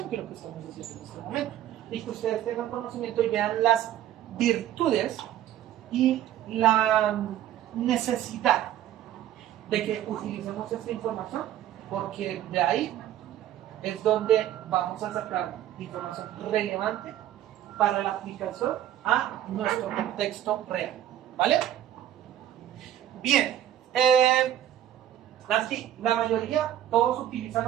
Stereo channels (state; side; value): quieter; left; 11.8 dB